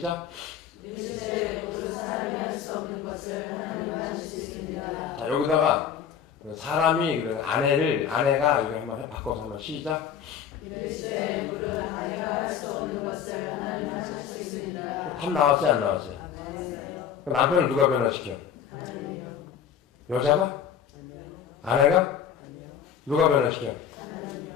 자, 여기다가 사람이 아내가 이거 한번 바꿔서 한번 시작. 답 나왔어요, 안 나왔어요? 남편을 누가 변화시켜? 여자가? 아내가? 누가 변화시켜?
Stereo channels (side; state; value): right; quieter; 8.3 dB